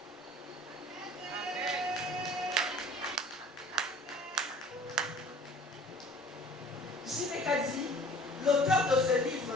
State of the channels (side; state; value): both; normal; correlation 0.49